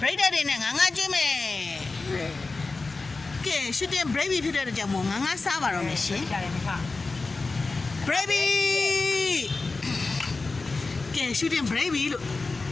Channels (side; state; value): right; quieter; 3.7 dB